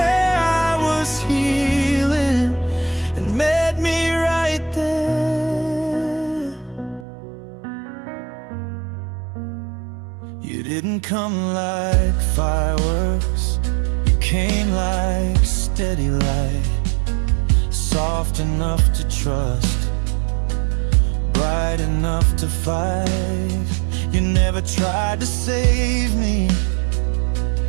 I was healing and met me right there. You didn't come like fireworks, you came like steady light. soft enough to trust, bright enough to fight. You never tried to save me,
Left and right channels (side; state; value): left; drops out; at 7.1 s